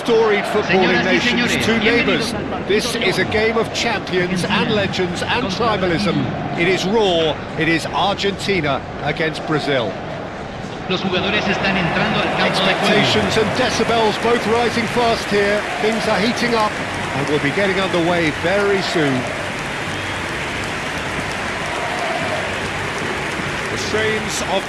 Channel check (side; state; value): both; identical; correlation 1.00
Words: footballing nations, two neighbours. This is a game of champions and legends and tribalism. It is raw, it is Argentina against Brazil. Los jugadores están entrando al campo de juego. Expectations and decibels both rising fast here. Things are heating up and we'll be getting underway very soon. The strains of